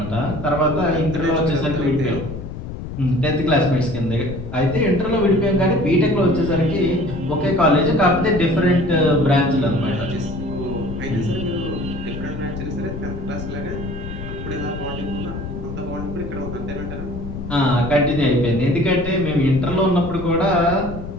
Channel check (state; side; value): noise; left; rumble, 8 dB below the sound